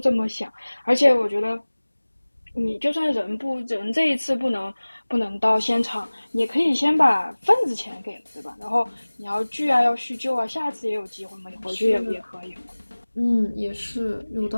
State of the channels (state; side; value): inverted; both; correlation -1.00